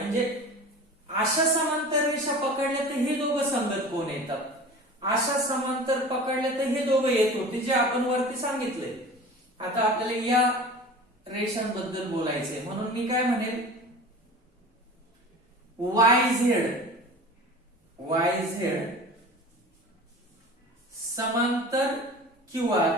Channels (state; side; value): normal; both; correlation 0.38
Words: अशा समांतर रेषा पकडल्या तर हे दोघं संगत कोण येतात. अशा समांतर पकडल्या तर हे दोघं येत होते जे आपण वरती सांगितलंय. आता आपल्याला या रेषांबद्दल बोलायचंय. म्हणून मी काय म्हणेल वाय झेड समांतर क्यू